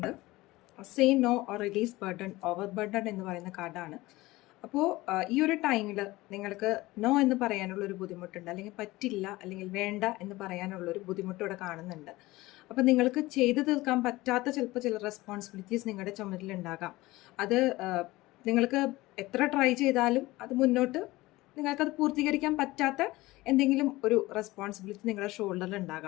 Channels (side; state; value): right; quieter; 19.4 dB